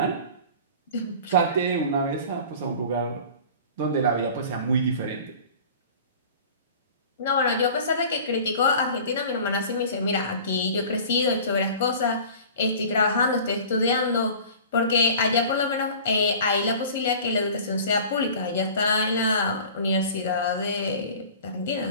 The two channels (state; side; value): inverted; both; correlation -0.42